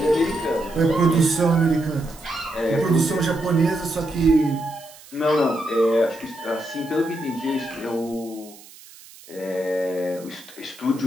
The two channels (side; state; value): right; noise; hiss, 21 dB below the sound